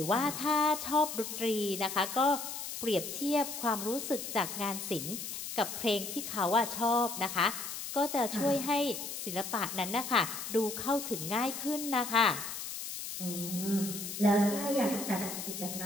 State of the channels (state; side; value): noise; left; hiss, 7 dB below the sound